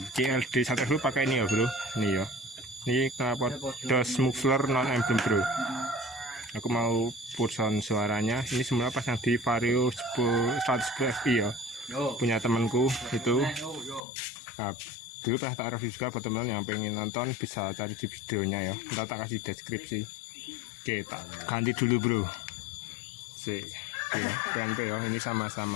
CLD 110 pakai ini ya bro. Ini ya. Ini knalpot DOS muffler non emblem bro. Aku mau pulson suaranya. Ini semula pasang di Vario 110 FI ya. Punya temanku itu. Nah, dulu pernah tak review juga buat teman yang pengen nonton bisa cari di videonya ya. Ntar tak kasih deskripsi. Oke, tak ganti dulu bro. Sih. Ya, PNP ya, ini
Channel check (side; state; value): right; drops out; at 14.0 s